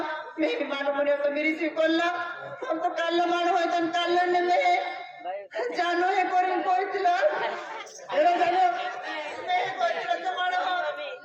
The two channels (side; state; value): both; identical; correlation 1.00